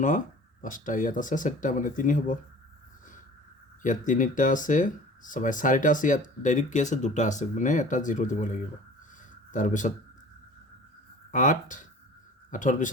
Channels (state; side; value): normal; both; correlation 0.44